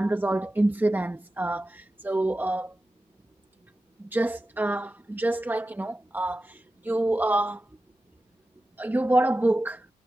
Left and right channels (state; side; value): normal; both; correlation 0.93